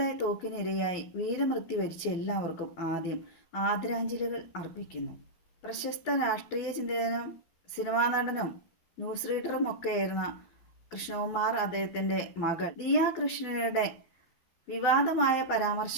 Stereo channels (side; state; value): right; late; 11 ms